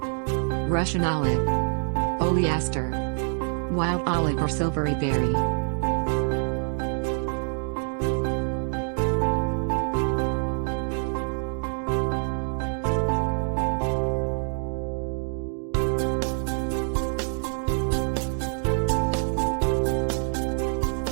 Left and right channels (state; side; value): silent; left; digital silence